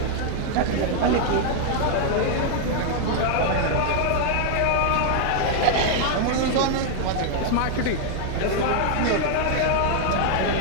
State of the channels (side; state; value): both; different; correlation 0.00